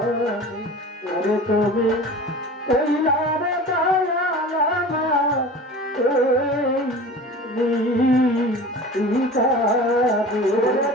ওরে তুমি রহিলা রে দয়াল আমার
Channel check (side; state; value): both; normal; correlation 0.38